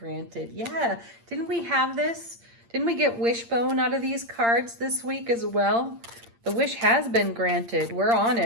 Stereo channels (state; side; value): late; left; 8.7 ms